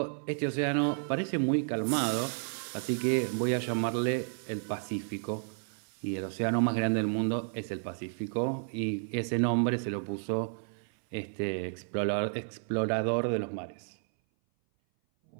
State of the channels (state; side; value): silent; left; 57 dB below the other